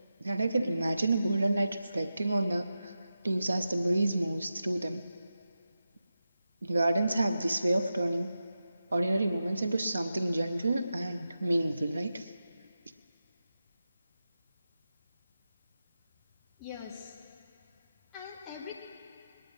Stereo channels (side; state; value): both; inverted; correlation -0.91